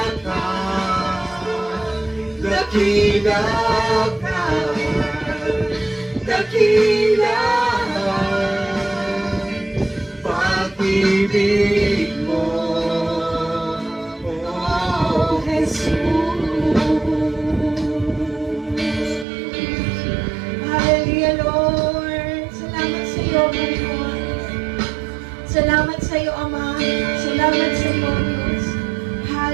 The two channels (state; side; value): drops out; left; at 19.2 s